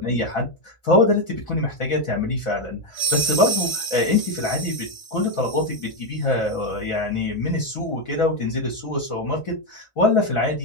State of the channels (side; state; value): right; late; 1.5 ms